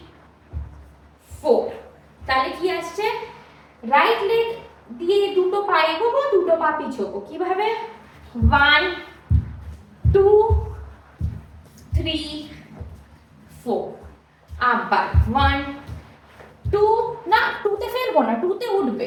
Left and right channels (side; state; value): both; identical; correlation 1.00